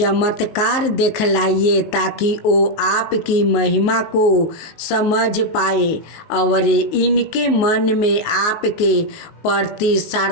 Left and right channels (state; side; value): late; right; 19 ms